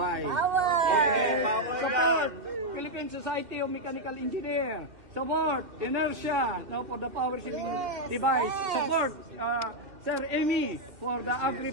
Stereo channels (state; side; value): late; left; 2.6 ms